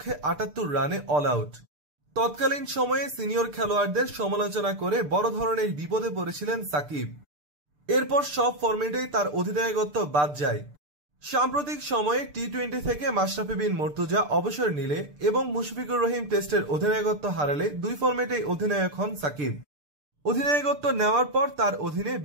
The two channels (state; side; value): late; left; 6.8 ms